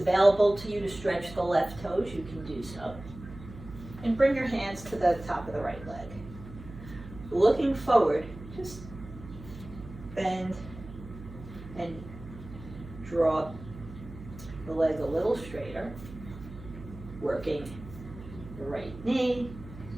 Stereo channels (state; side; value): noise; right; hum, 14 dB below the sound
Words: to you to stretch the left toes, you can do so. And bring your hands to the top of the right leg. Looking forward, just bend and draw the leg a little straighter, working the right knee